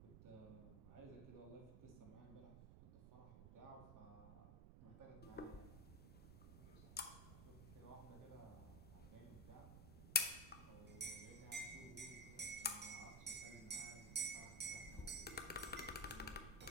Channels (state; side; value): noise; right; rumble, 11 dB below the sound